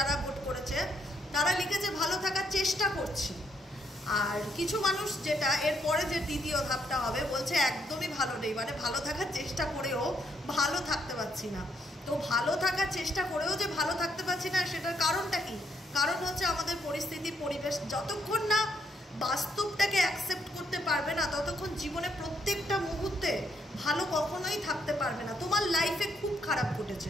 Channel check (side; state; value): both; normal; correlation 0.74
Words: ভোট করেছে তারা লিখেছে ভালো থাকার চেষ্টা করছি। আর কিছু মানুষ, যেটা এরপরে যে দ্বিতীয় ধাপটা হবে, বলছে একদমই ভালো নেই, মানে ভালো থাকার চেষ্টা করেও ভালো থাকতে পারছি না। তো ভালো থাকার চেষ্টা করেও যে ভালো থাকতে পারছি না, সেটার কারণটা কি? কারণ হচ্ছে আমাদের পরিস্থিতি, পরিবেশ। যতক্ষণ না বাস্তবটাকে অ্যাকসেপ্ট করতে পারবে না, ততক্ষণ জীবনে প্রত্যেকটা মুহূর্তে ভালো কখনোই থাকতে পারবে না। তোমার লাইফে খুব খারাপ ঘটেছে,